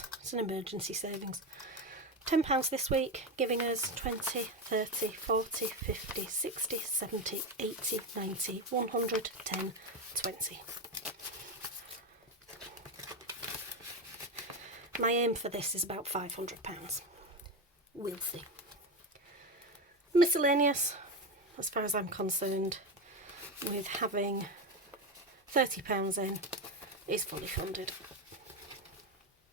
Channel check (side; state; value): both; normal; correlation 0.15